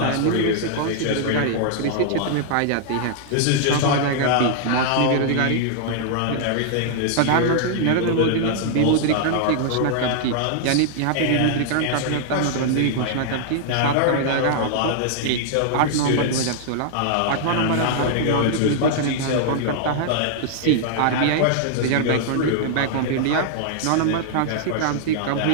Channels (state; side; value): different; both; correlation -0.01